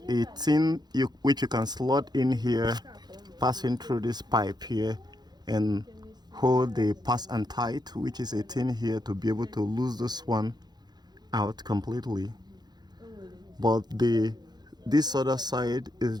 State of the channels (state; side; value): late; left; 0.20 ms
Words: 18 which you can slot in here, passing through this pipe here, and hold the pass and tight, which is 18 here, to be able to lose this one out completely. But this other side is